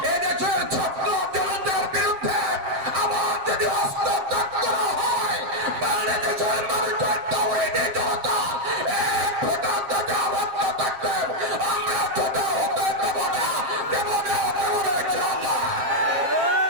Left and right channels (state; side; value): late; left; 7.5 ms